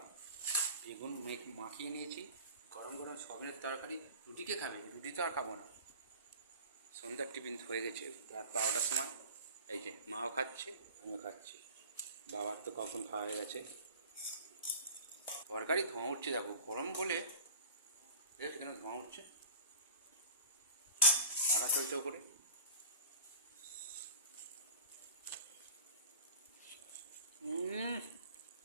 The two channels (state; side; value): inverted; both; correlation -0.40